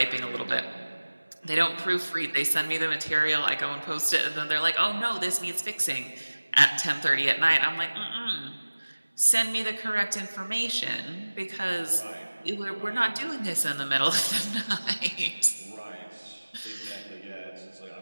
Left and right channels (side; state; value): both; inverted; correlation -1.00